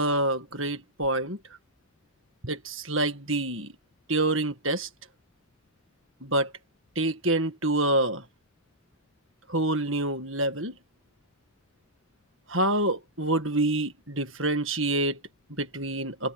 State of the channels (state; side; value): normal; both; correlation -0.12